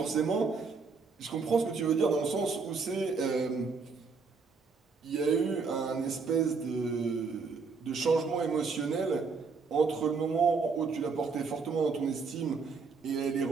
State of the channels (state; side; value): quieter; left; 4.8 dB